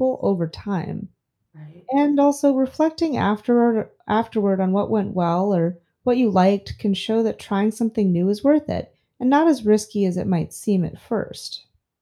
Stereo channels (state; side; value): identical; both; correlation 1.00